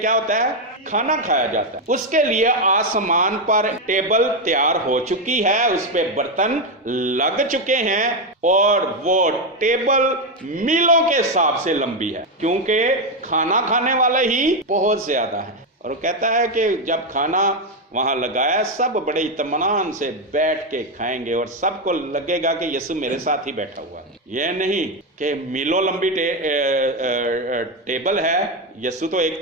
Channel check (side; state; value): both; normal; correlation 0.07